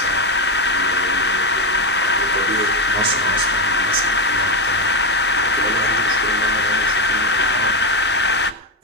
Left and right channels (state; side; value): normal; both; correlation 0.10